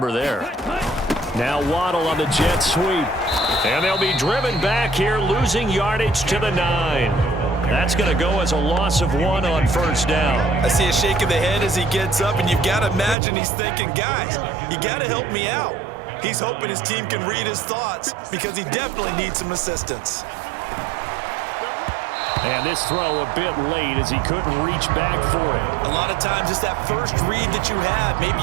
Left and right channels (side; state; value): left; drops out; at 13.2 s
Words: there. Now Waddle on the jet sweep. And they'll be driven back here, losing yardage to the 9. That's going to go as a loss of 1 on first down. I see a shake of the head as he gets up, and you've got to imagine he's thinking, guys, you got to help me out. He's hoping his team can read his thoughts because he definitely needs some assistance. And this throw a bit late as he couldn't reach back for it. A lot of times it's that first read that you have. Maybe